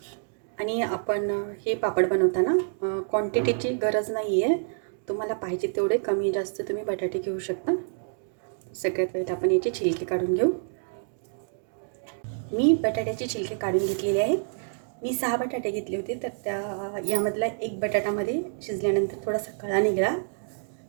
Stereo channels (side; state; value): left; silent; digital silence